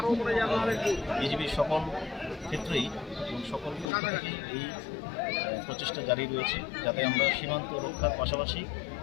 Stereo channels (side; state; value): right; drops out; at 3.9 s